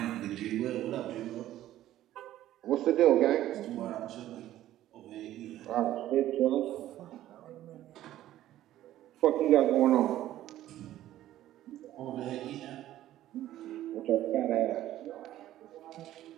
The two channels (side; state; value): left; quieter; 13.6 dB